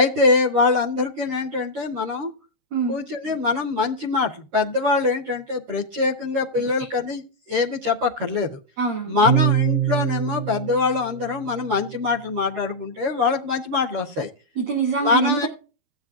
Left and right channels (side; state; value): left; late; 13 ms